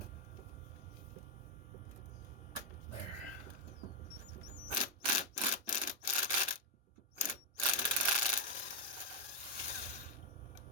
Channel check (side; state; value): both; normal; correlation -0.01